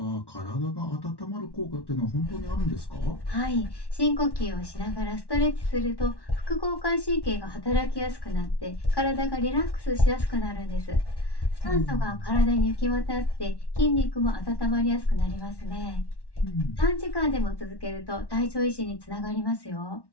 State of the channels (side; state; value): right; late; 1.1 ms